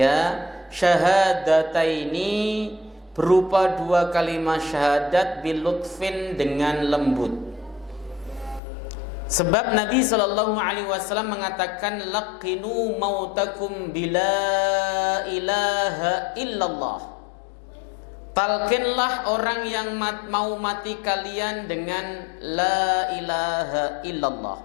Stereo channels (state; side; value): drops out; right; at 8.6 s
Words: syahadataini, berupa dua kalimat syahadat bilutfin, dengan lembut. Sebab Nabi sallallahu alaihi wasallam mengatakan laqinu mautakum bila ilaha illallah. Talqinlah orang yang mau mati kalian dengan la ilaha illallah.